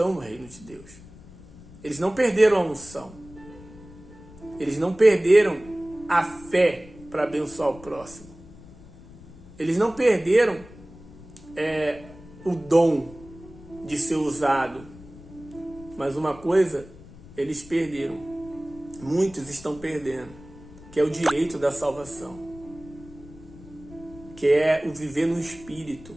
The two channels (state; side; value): noise; left; rumble, 19 dB below the sound